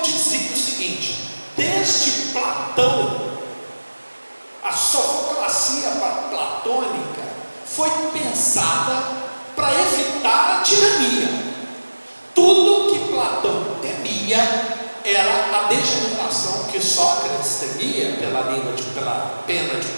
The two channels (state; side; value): inverted; both; correlation -1.00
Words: o seguinte: desde Platão, a sofoclacia platônica foi pensada para evitar a tirania. Tudo que Platão temia era a degeneração que Sócrates temia pela pena de